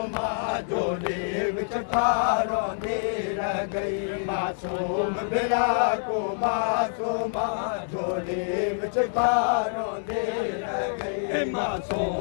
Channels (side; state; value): right; silent; 61 dB below the other